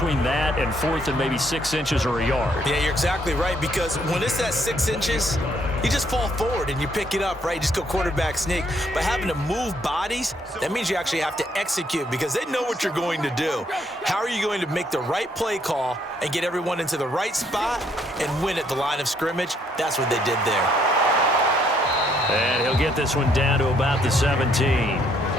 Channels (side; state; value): both; normal; correlation 0.69